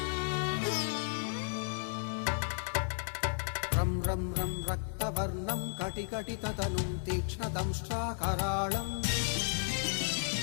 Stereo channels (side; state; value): right; silent; 55 dB below the other